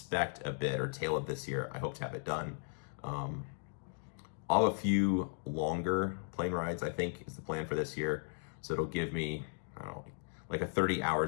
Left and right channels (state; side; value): silent; right; digital silence